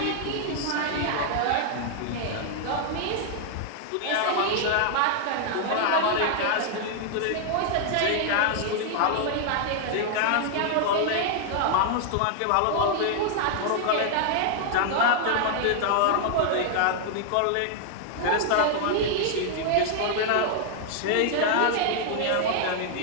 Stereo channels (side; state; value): both; different; correlation -0.01